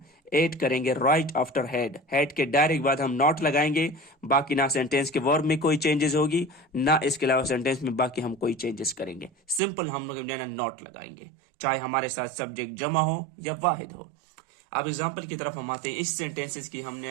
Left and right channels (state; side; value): drops out; left; at 9.6 s